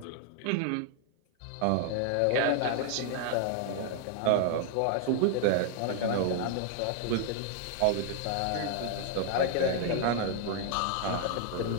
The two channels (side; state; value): both; different; correlation -0.01